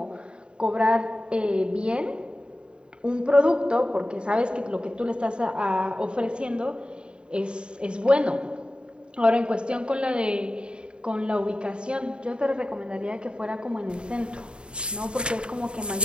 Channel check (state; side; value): late; left; 0.052 ms